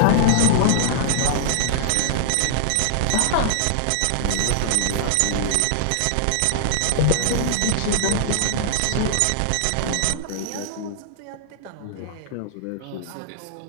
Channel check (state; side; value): different; both; correlation -0.01